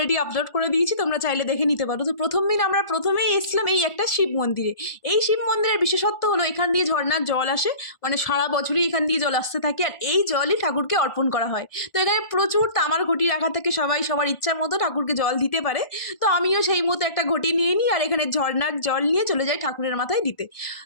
আপলোড করে দিয়েছি, তোমরা চাইলে দেখে নিতে পারো। তো প্রথম দিন আমরা প্রথমেই এসেছিলাম এই একটা শিব মন্দিরে। এই শিব মন্দিরের বিশেষত্ব হলো এখান দিয়ে ঝর্ণার জল আসে, মানে সারা বছরই এখান দিয়ে জল আসতে থাকে, আর এই জলই ঠাকুরকে অর্পণ করা হয়। তো এখানে প্রচুর তামার ঘটি রাখা থাকে, সবাই সবার ইচ্ছা মতো ঠাকুরকে জল দিতে পারে। তো আমিও সেই মতো একটা ঘটি নিয়ে নিই, আর এখানে ঝর্ণার জল নিয়ে চলে যাই ঠাকুরের মাথায় দিতে।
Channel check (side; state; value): right; late; 1.4 ms